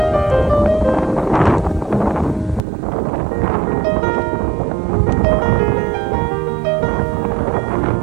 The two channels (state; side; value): drops out; left; at 2.6 s